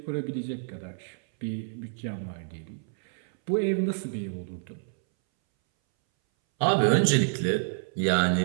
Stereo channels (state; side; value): silent; left; 59 dB below the other